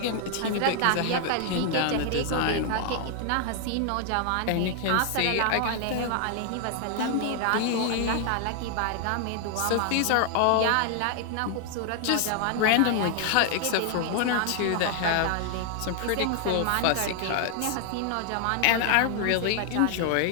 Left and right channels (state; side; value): different; both; correlation 0.00